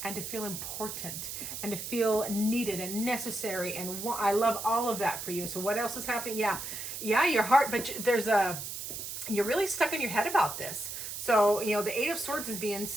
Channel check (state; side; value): noise; right; hiss, 7 dB below the sound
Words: and to feel important and to feel needed and necessary. And I love all of that for you. So what else is happening? Yeah, your heart, but you're really stuck in your head about this. So, the Eight of Swords is being,